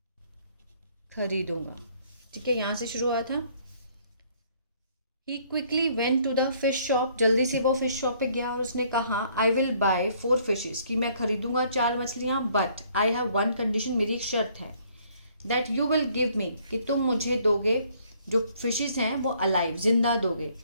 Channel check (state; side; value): inverted; both; correlation -0.63